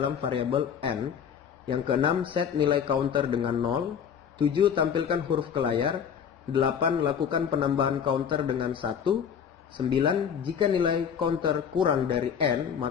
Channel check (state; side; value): quieter; right; 7.7 dB